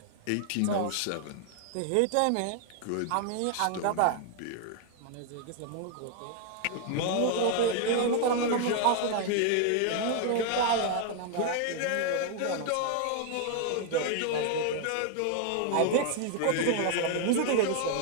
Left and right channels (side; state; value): both; different; correlation 0.00